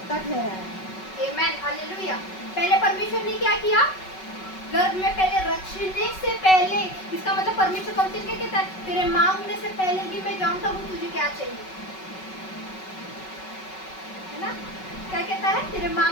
ठहराया। Amen hallelujah. पहले परमेश्वर ने क्या किया? गर्भ में पहले रचने से पहले, इसका मतलब परमेश्वर कब से क्या कहता है? तेरे मांगने से पहले ही मैं जानता हूँ तुझे क्या चाहिए, है ना। क्या कहता है? तेरे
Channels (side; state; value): right; late; 5.3 ms